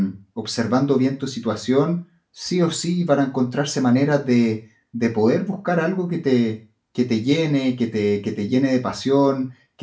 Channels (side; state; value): both; identical; correlation 1.00